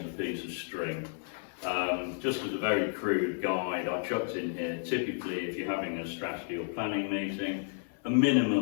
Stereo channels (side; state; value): right; silent; 56 dB below the other